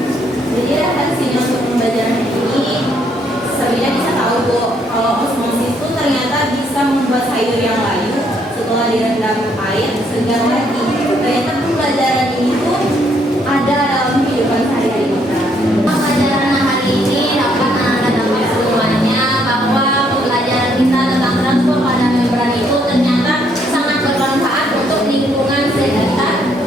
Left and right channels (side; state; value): both; normal; correlation 0.70